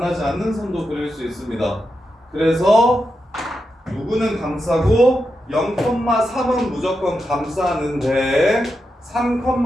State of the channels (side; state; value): both; normal; correlation 0.87